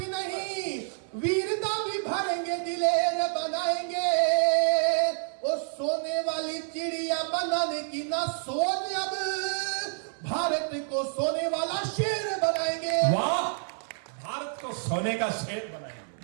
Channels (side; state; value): left; silent; 59 dB below the other